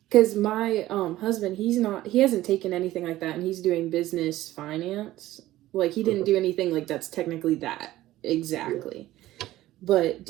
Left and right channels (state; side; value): quieter; left; 15.5 dB